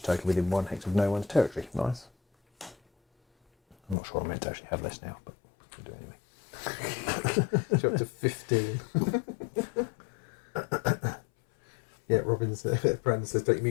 token within 1 hex of no one's territory. Nice. I'm not sure I'm meant to actually have this now, but we'll do it anyway. You're up to 15. Yeah, Robin's Brandon says, don't you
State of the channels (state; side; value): drops out; right; at 4.0 s